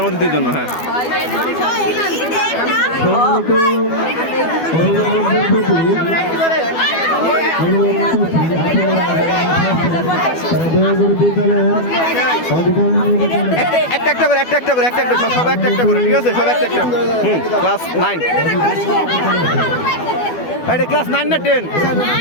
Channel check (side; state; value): right; late; 12 ms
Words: অতিথির জন্য। হ্যাঁ সম্মানিত অভিভাবকদের প্রতি অনুরোধ করছি, দয়া করে বিদ্যালয়ের অধিকারী একটা একটা করে, একটা একটা করে, একটা একটা, সব একটা একটা করে, ঠিক আছে? সব একটা একটা। ক্লাস 9, এটা ক্লাস 9 না 10?